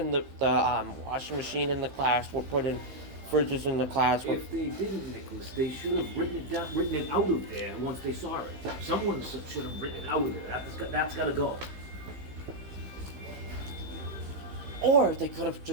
the washing machine in the class, we're putting fridges in the class? If they didn't, Nicholas, they should have written it out of there once they saw it. Someone should have written it out of there. That's got to go. Or they could have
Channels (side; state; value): left; late; 15 ms